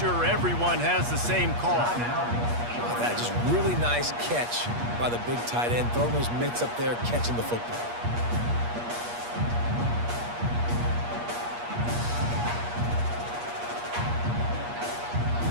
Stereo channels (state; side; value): late; left; 8.4 ms